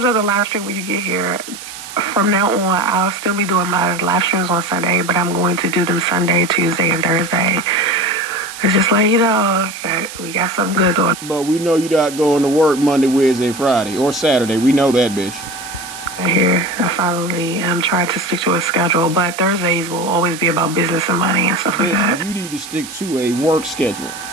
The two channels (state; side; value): noise; right; hiss, 13 dB below the sound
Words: up the live stream when you get here. From now on, I'll still be doing my live streams on Sunday, but I'm going to do them Sunday, Tuesday, and Thursday. It's just like, you know, that we got something good going. But we know you're not going to work Monday, Wednesday, Friday, or Saturday. We know that, bitch. here. I finally tried to stick to a schedule, but Thursdays will always be about business and money and stuff like that. You need to stick to a work schedule.